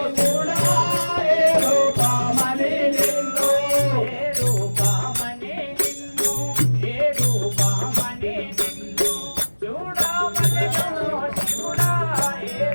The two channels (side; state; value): both; inverted; correlation -1.00